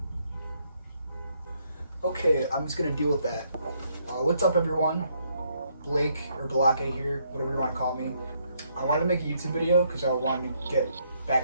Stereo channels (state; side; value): inverted; both; correlation -0.72